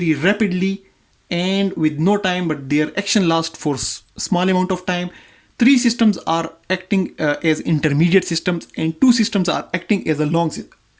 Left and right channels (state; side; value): identical; both; correlation 1.00